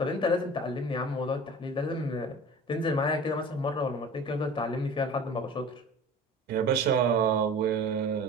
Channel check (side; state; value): both; normal; correlation 0.39